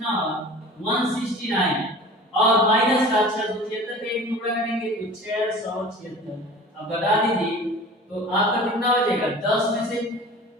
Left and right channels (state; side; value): normal; both; correlation 0.40